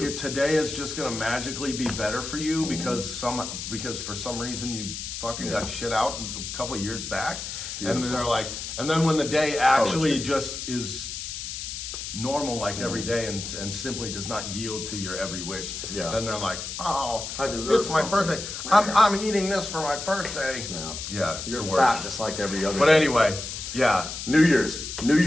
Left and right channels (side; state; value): left; noise; hiss, 7 dB below the sound